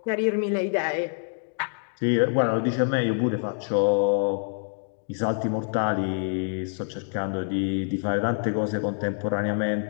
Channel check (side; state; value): right; silent; digital silence